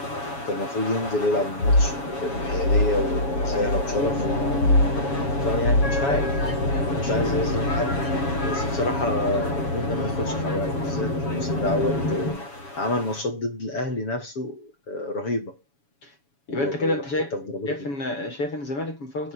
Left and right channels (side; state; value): right; late; 7.1 ms